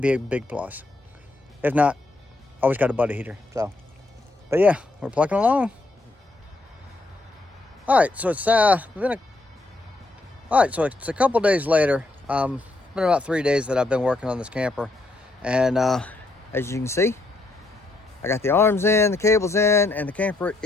be a big plus. If not, always got a buddy heater. So, but yeah, we're plucking along. All right, so it's been a couple days later. It's been about 3 days that I've been working on this camper, and as you can see, I got the arms in, the cables in, and the camper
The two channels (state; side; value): quieter; right; 3.0 dB